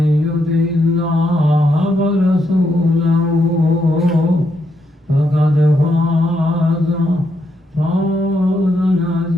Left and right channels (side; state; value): both; normal; correlation 0.79